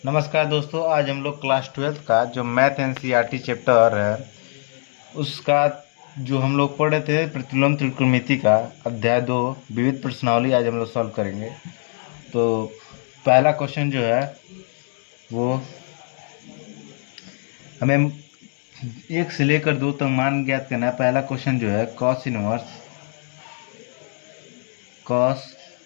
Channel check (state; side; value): silent; right; digital silence